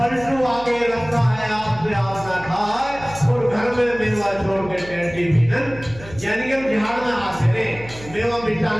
आगे रखा है आपसे आप ना खाए, और घर में मेवा छोड़ के टैटी भी न, यानी कि हम झाड़ में आते रहे, मेवा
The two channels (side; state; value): right; noise; hum, 17 dB below the sound